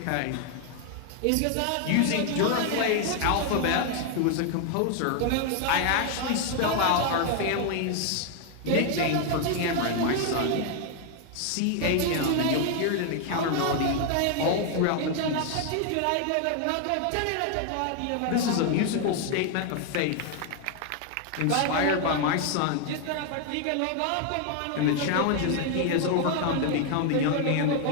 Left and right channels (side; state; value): both; different; correlation 0.00